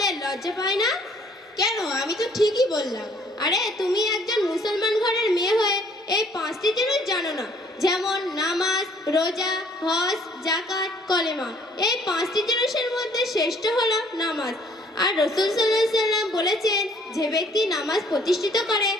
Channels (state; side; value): normal; both; correlation 0.61